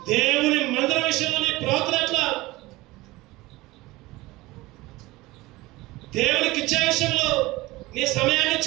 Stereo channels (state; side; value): quieter; left; 20.0 dB